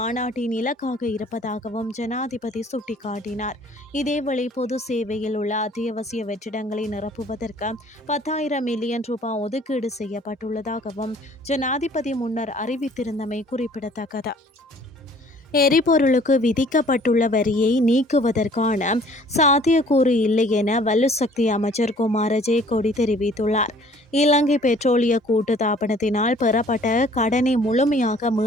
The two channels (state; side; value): normal; both; correlation 0.55